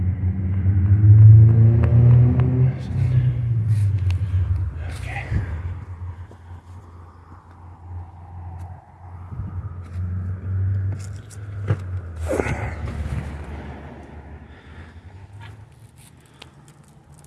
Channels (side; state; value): both; identical; correlation 1.00